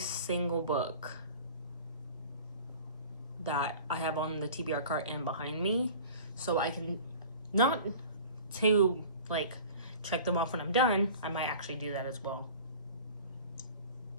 book that I have on the TBR cart and behind me. so I can, not to like check them off when I'm done, I might actually do that as well.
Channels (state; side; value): inverted; both; correlation -0.42